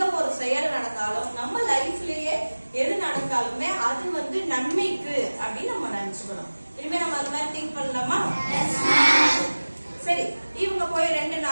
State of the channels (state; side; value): inverted; both; correlation -1.00